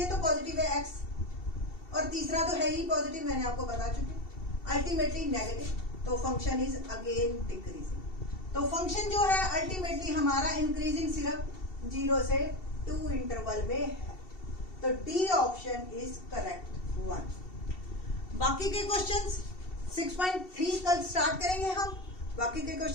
तो पॉजिटिव है x, और तीसरा तो है ही पॉजिटिव, मैंने आपको बता चुकी, अल्टीमेटली नेगेटिव। तो फंक्शन इज अगेन डिक्रीजिंग। तो फंक्शन जो है अल्टीमेटली हमारा इंक्रीजिंग सिर्फ 0 से 2 इंटरवल में है। तो डी ऑप्शन इज करेक्ट 1। बाकी के क्वेश्चंस 6.3 कल स्टार्ट करेंगे हम। बाकी के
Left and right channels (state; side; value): late; right; 2.7 ms